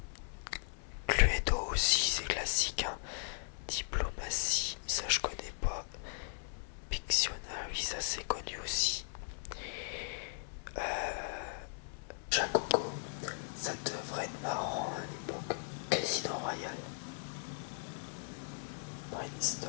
Cluedo aussi c'est classique. Hein. Diplomatie, ça je connais pas. Pictionary, ça c'est connu aussi. Jacoco, ça devrait être marrant à l'époque. Casino Royale.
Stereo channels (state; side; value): silent; right; 53 dB below the other